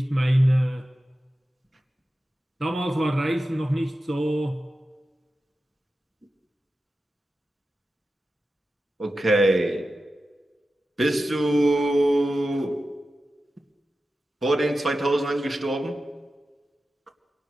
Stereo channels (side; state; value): both; normal; correlation 0.93